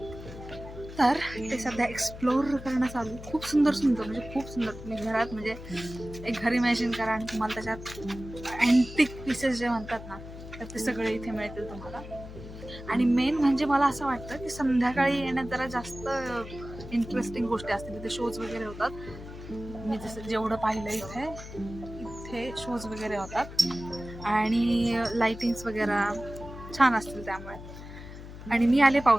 तर ते सध्या एक्सप्लोर करणं चालू. खूप सुंदर म्हणजे खूप सुंदर. तुम्ही घरात म्हणजे एक घर इमॅजिन करा आणि तुम्हाला त्याच्यात अँटिक पीसेस जे म्हणतात ना तर ते सगळे इथे मिळतील तुम्हाला. आणि मेन म्हणजे मला असं वाटतं की संध्याकाळी येण्यात जरा जास्त इंटरेस्टिंग गोष्टी असतील. तिथे शोज वगैरे होतात. मी जसं जेवढं पाहिलं इथे शोज वगैरे होतात आणि लाइटिंग्स वगैरे छान असतील त्यामुळे. आणि मी आले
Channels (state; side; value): noise; left; hum, 13 dB below the sound